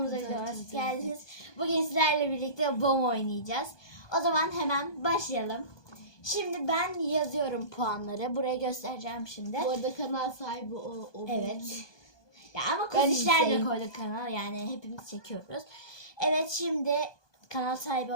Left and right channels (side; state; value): right; late; 1.2 ms